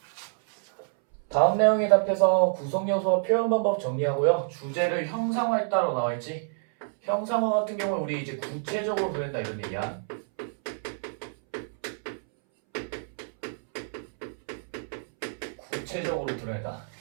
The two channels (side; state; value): left; silent; 60 dB below the other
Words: 다음 내용에 답해서 구성요소와 표현 방법 정리하고요. 주제를 형상화했다로 나와있지. 형상화 같은 경우는 우리 이제 구체적으로 그린다 이런 얘기야. 구체적으로 드러낸다.